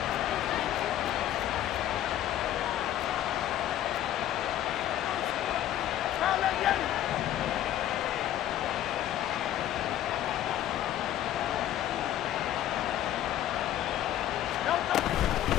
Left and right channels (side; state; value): right; quieter; 12.1 dB